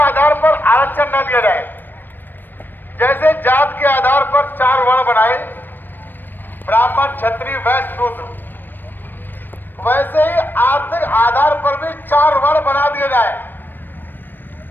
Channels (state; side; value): late; right; 0.093 ms